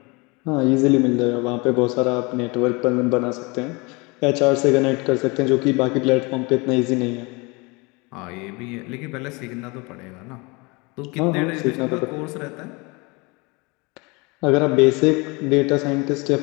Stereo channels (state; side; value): quieter; right; 27.2 dB